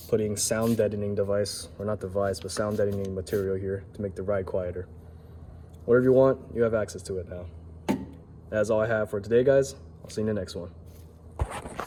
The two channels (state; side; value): identical; both; correlation 1.00